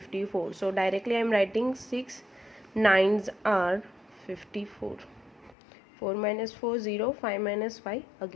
So directly I am writing 6 9s are 54. 4 minus 4 0, 5 minus 5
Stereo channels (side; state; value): right; drops out; at 5.6 s